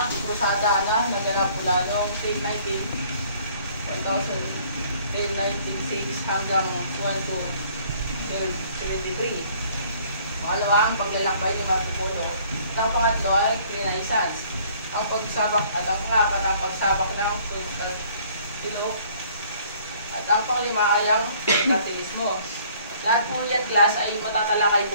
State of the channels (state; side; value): inverted; both; correlation -0.57